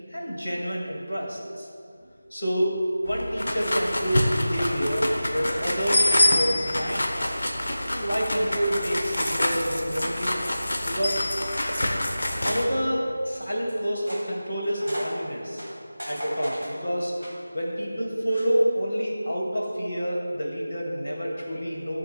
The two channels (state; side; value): inverted; both; correlation -0.96